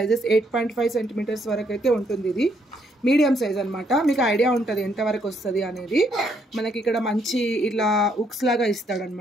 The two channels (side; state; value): both; normal; correlation 0.72